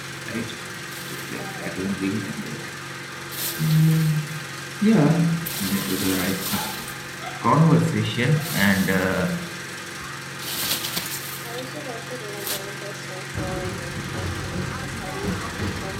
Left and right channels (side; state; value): both; identical; correlation 1.00